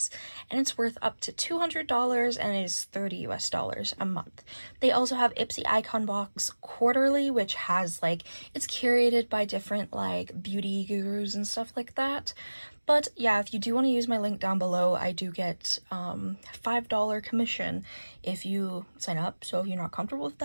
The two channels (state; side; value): inverted; both; correlation -1.00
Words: and it's worth up to $200 and it is $30 US a month. They also have Ipsy Icon Box quarterly, which has it's curated by different beauty gurus and stuff like that. But yeah, if you do want to use my link down below, I do get $5 commission if you sign up. So if you're not comfortable with